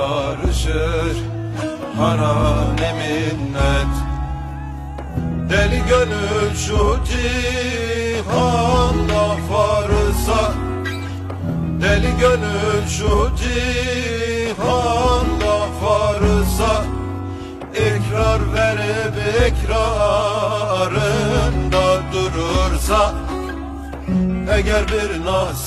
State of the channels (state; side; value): identical; both; correlation 1.00